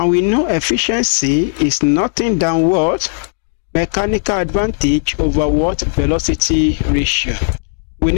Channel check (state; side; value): silent; right; digital silence